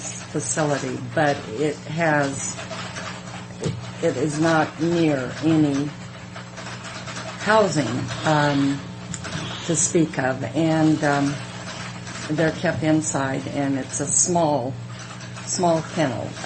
facility, but it is not near any housing to speak of, and they're kept inside, and it's a small kennel.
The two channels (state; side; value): identical; both; correlation 1.00